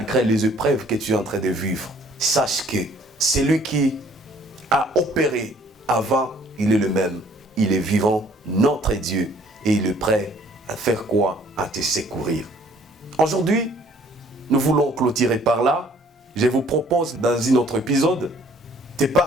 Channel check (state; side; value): normal; both; correlation 0.58